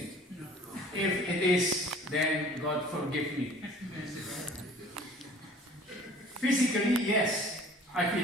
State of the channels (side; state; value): both; normal; correlation 0.49